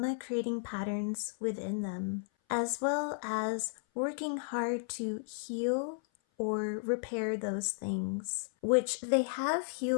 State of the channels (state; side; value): silent; right; 55 dB below the other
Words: creating patterns within them, as well as working hard to heal or repair those things, which they have